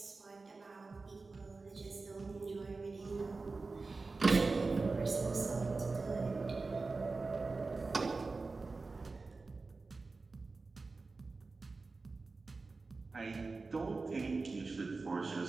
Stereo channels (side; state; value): left; quieter; 3.9 dB